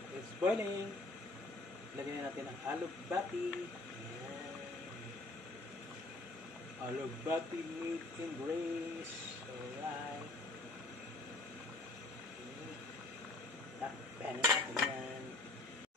It's boiling. Lagyan natin ang alugbati. Alugbati made in Grace. Alright. Takpan natin yan.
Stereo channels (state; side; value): quieter; right; 3.0 dB